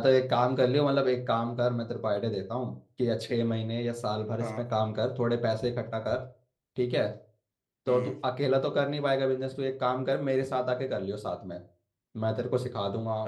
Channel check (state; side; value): identical; both; correlation 1.00